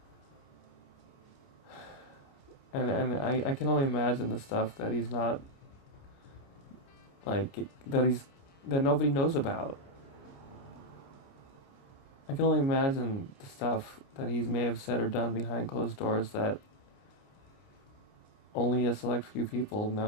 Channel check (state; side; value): late; right; 29 ms